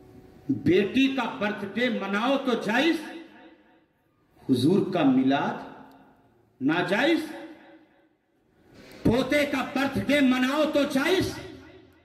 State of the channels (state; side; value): identical; both; correlation 1.00